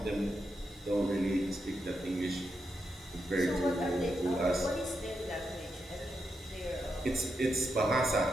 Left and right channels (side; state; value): both; normal; correlation 0.85